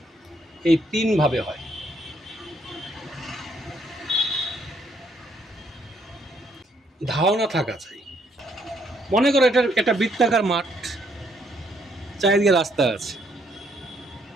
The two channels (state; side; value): normal; both; correlation 0.70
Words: এই 3 ভাবে হয়। ধারণা থাকা চাই। মনে করো এটা বৃত্তাকার মাঠ, চারিদিকে রাস্তা আছে,